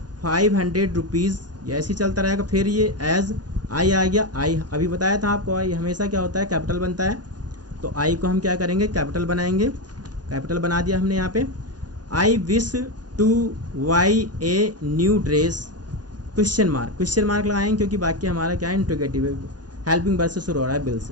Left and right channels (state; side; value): late; left; 0.69 ms